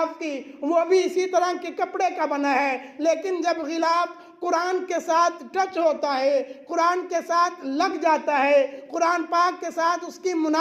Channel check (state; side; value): identical; both; correlation 1.00